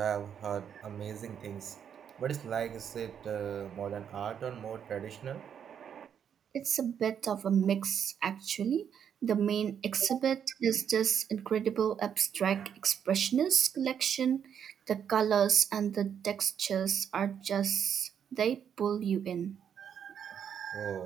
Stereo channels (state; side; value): quieter; left; 8.3 dB